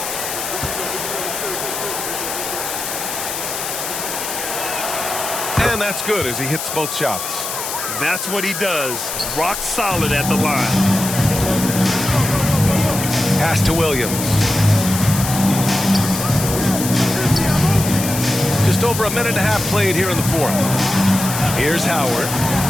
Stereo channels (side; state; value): left; noise; hiss, 5 dB below the sound